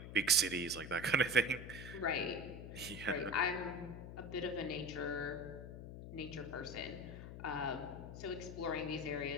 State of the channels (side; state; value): left; noise; hum, 10 dB below the sound